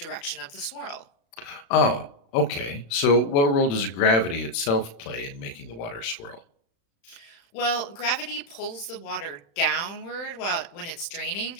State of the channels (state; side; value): late; right; 35 ms